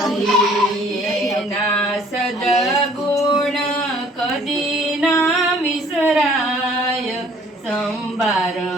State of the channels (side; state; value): both; normal; correlation 0.56